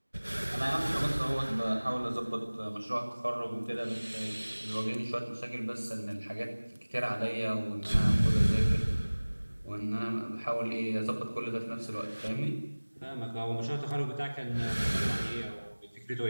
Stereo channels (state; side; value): inverted; both; correlation -1.00